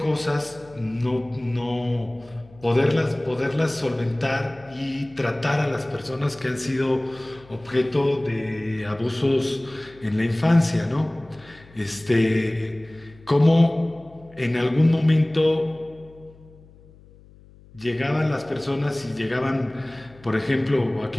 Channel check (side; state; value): left; noise; hum, 24 dB below the sound